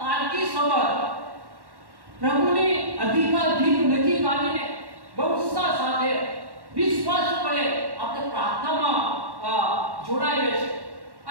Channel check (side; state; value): left; late; 1.1 ms